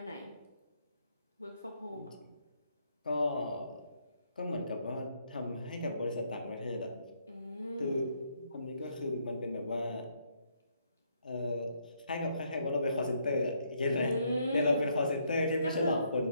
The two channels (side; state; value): both; inverted; correlation -0.72